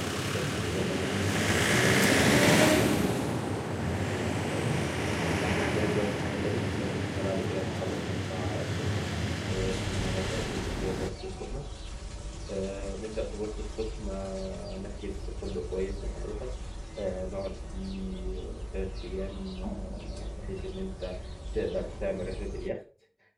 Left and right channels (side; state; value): both; identical; correlation 1.00